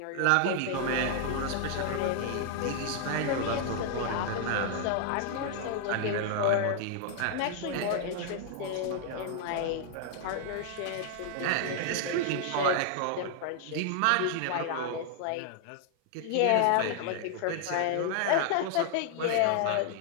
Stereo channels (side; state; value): both; different; correlation -0.01